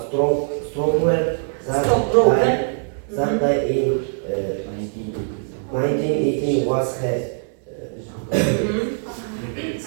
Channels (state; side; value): silent; left; digital silence